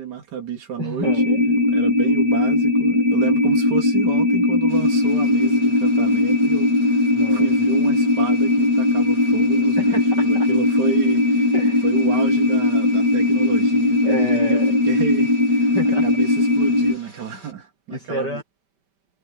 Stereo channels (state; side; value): late; left; 5.1 ms